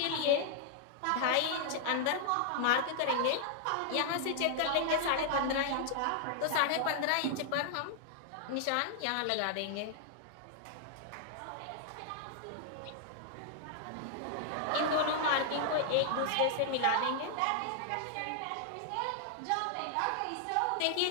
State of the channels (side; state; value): both; different; correlation -0.01